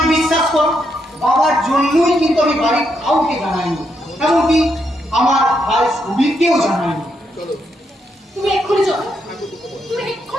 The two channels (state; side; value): normal; both; correlation 0.79